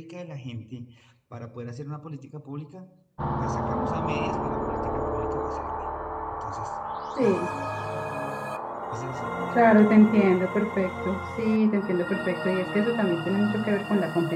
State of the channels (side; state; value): both; identical; correlation 1.00